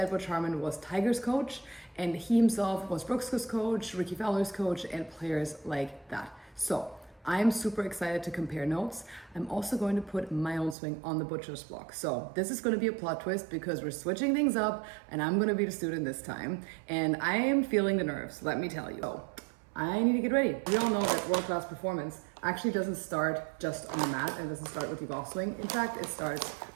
Butch Harmon, was Tiger's coach, and he himself was Brooks' coach, Ricky Fowler's coach, and players like that. So I'm super excited to compare notes. I'm also going to put my own swing on the Butcher's block. So this is going to be a plot twist because we're switching things up and I'm going to be the student this time. And I am feeling the nerves, let me tell you. So I need to get ready. We all know that world-class performance actually doesn't start just on the mat and doesn't start with your golf swing. In fact, it starts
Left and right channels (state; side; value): drops out; left; at 10.8 s